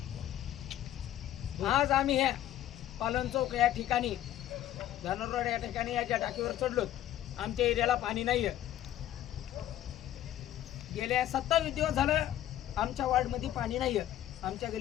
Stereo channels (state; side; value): quieter; right; 12.5 dB